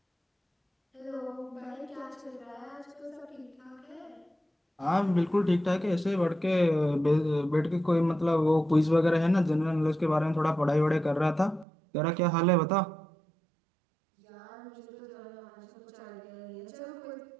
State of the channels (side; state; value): left; drops out; at 11.7 s